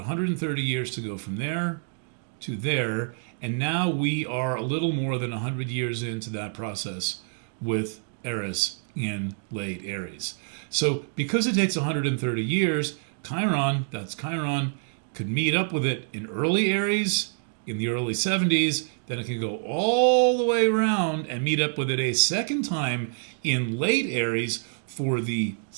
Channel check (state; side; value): silent; left; 60 dB below the other